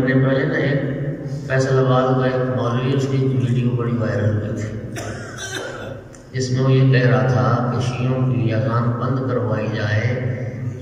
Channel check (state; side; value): identical; both; correlation 1.00